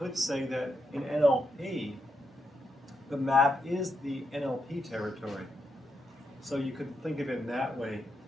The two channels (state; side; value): normal; both; correlation 0.82